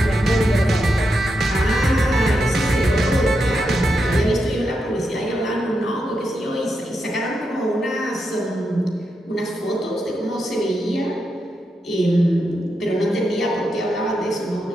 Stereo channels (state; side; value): normal; both; correlation 0.85